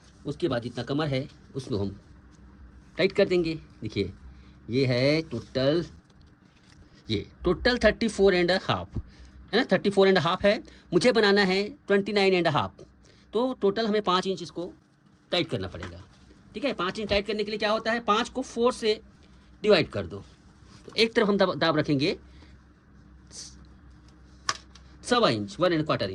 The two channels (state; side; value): identical; both; correlation 1.00